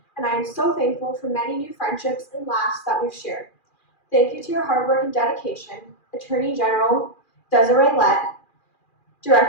and I am so thankful for many new friendships and laughs that we've shared. Thank you to your hard work and dedication, Attorney General Desiree Lett,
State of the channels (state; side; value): late; right; 2.4 ms